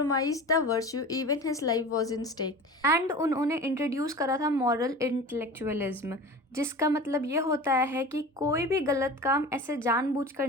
the virtue even his life was in stake. And उन्होंने इंट्रोड्यूस करा था मॉरल इंटेलेक्चुअलिज्म, जिसका मतलब ये होता है कि कोई भी गलत काम ऐसे जानबूझकर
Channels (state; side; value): normal; both; correlation 0.35